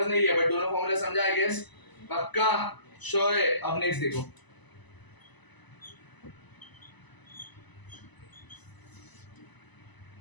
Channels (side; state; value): right; late; 1.0 ms